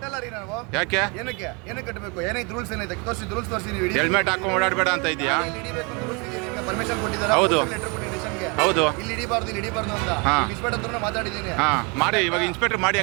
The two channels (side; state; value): left; quieter; 30.9 dB